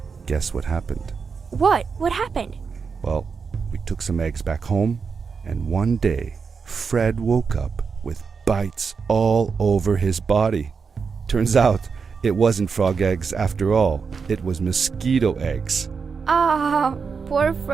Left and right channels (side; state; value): left; quieter; 5.5 dB